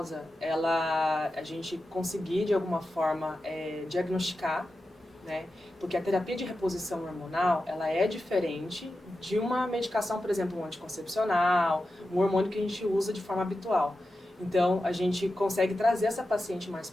a gente conseguir de alguma forma diagnosticar, né, porque a terapia de reposição hormonal ela é diferente de uma medicação, por exemplo, um anticoncepcional, um hormônio que a gente usa de forma habitual. Então, a gente consegue trazer essa paciente mais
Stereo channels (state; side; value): normal; both; correlation 0.91